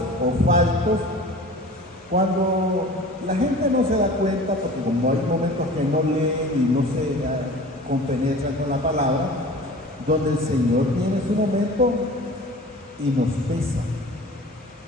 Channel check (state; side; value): normal; both; correlation 0.41